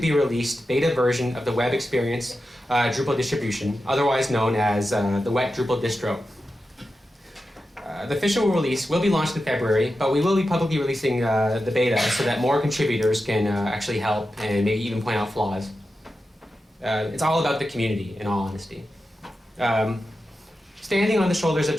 released beta version of the web experience Drupal distribution, otherwise known as the wet Drupal distro. The official release will be launched in February, but we will be publicly releasing the beta so that more contributors can actually help and maybe even point out flaws. It's all about the community, in all honesty. Standing on the shoulders of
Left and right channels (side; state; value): both; normal; correlation 0.91